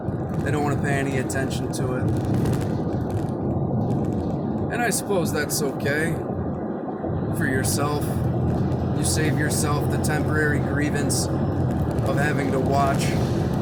They don't want to pay any attention to it. And I suppose that's okay for yourself. You save yourself the temporary grievance of having to watch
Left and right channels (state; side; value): identical; both; correlation 1.00